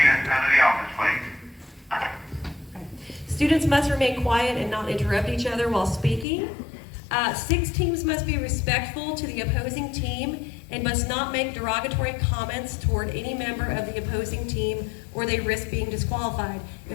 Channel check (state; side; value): drops out; right; at 6.2 s